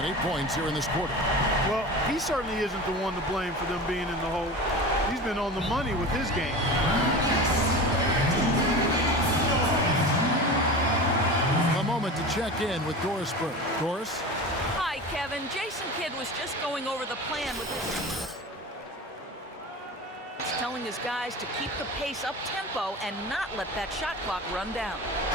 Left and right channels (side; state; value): both; normal; correlation 0.31